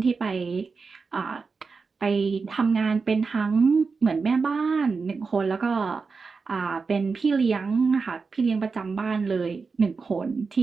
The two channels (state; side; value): quieter; left; 4.7 dB